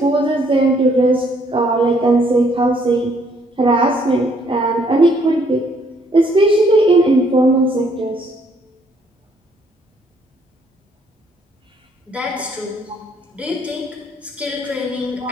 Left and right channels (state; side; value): normal; both; correlation 0.66